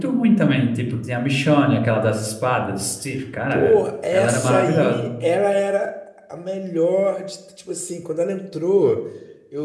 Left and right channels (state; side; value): identical; both; correlation 1.00